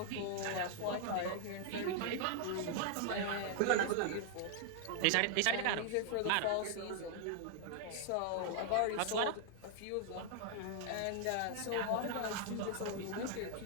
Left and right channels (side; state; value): both; different; correlation 0.00